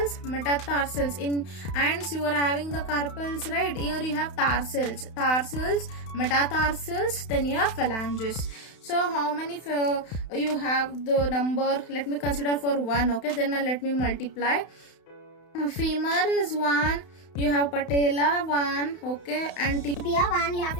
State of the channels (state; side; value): late; right; 31 ms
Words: metatarsals. In hands you are having the carpals, right? Here you have tarsals, metatarsals, then you have phalanges. So how many you have the number? Let me consider for 1, okay? Then let me multiply. Femur is 1, you have patella 1, okay, and tibia 1, you have